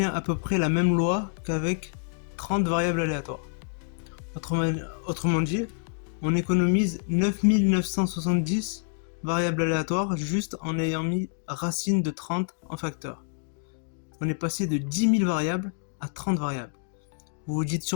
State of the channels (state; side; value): silent; right; 60 dB below the other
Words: à peu près la même loi qu'avec 30 variables aléatoires. Autrement dit, on économise 9970 variables aléatoires juste en ayant mis racine de 30 en facteur. On est passé de 10 000 variables à 30 variables. Vous vous dites